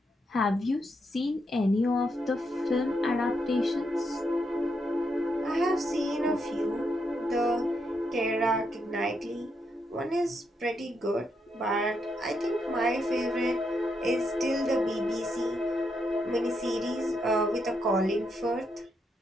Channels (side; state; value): both; normal; correlation 0.80